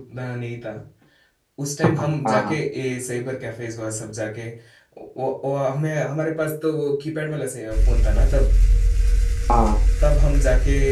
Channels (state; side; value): identical; both; correlation 1.00